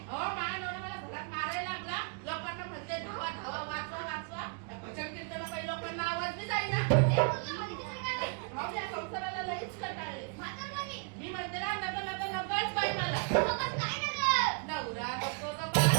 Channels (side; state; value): left; quieter; 38.0 dB